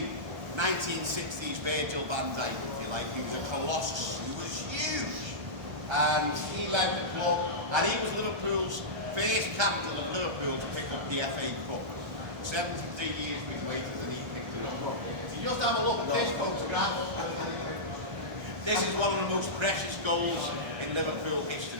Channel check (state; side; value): late; left; 1.3 ms